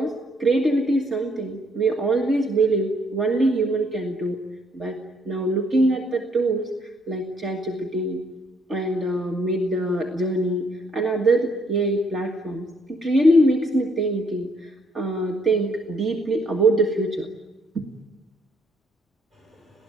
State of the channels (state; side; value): normal; both; correlation 0.68